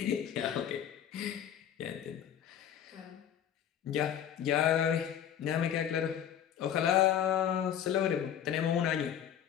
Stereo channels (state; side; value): quieter; right; 9.7 dB